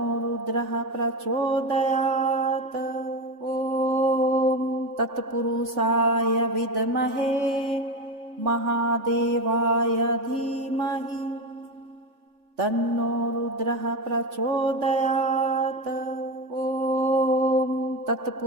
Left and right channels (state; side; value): late; left; 3.4 ms